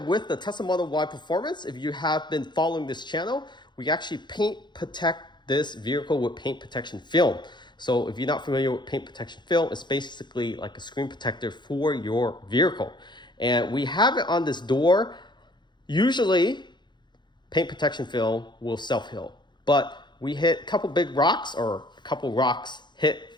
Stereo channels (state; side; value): late; right; 0.22 ms